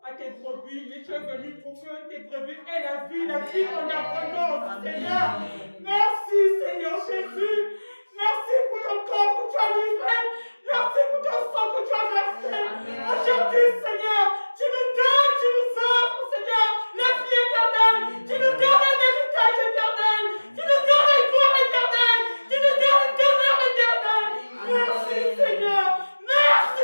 à tes brebis. Et tu es venu pour que tes brebis aient la vie en abondance, Seigneur. Merci Seigneur Jésus. Merci pour ton corps que tu as livré. Merci pour ton sang que tu as versé. Aujourd'hui, Seigneur, tu nous donnes, tu nous offres, Seigneur, la vie éternelle. Tu nous donnes un héritage éternel. Tu nous donnes une gloire éternelle. Tu nous donnes une demeure éternelle. Merci, Seigneur.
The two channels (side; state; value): both; inverted; correlation -1.00